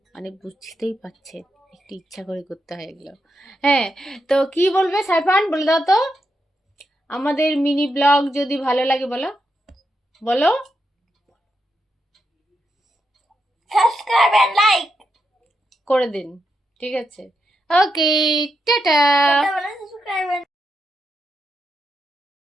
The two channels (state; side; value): normal; both; correlation 0.84